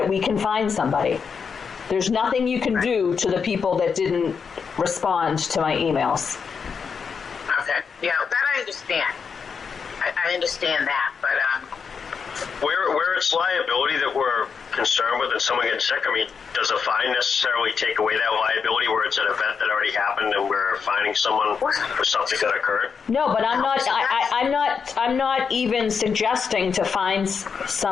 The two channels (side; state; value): right; quieter; 6.0 dB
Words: we can find somebody. There's nothing you can do to the people that didn't respond to my emails. Okay, yeah, that I understand. I understand that, but Where it's liability that we're concerned with and someone gets sick, I mean, does a fine necessarily take away that liability where it's an event that already happened and we're fining someone for something that occurred? No, but I'm not. I'm not even suggesting to fine